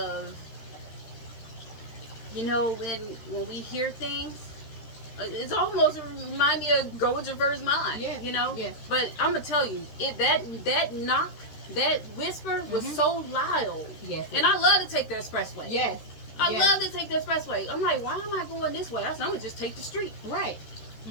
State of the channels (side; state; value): right; late; 13 ms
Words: You know, when we hear things, it's almost remind me of go with your first mind. Yeah. You know. Yes. But I'm gonna tell you, that knock, that whisper was so loud. Yes. And I love to take the expressway. Yes. I love to take the expressway. I'm like, why am I going this way? I'm gonna just take the street. Right.